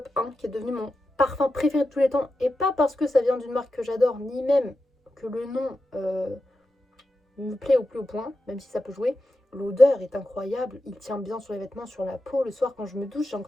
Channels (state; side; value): normal; both; correlation 0.90